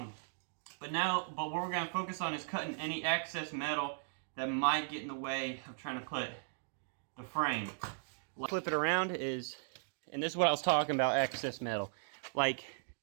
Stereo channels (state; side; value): silent; left; digital silence